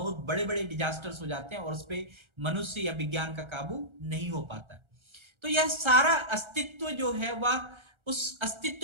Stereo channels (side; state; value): left; late; 1.3 ms